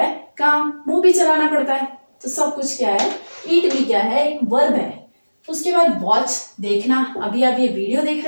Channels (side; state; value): both; inverted; correlation -1.00